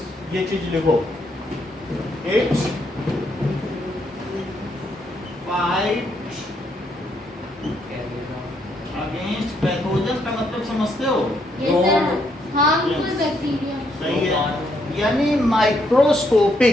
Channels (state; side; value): normal; both; correlation 0.74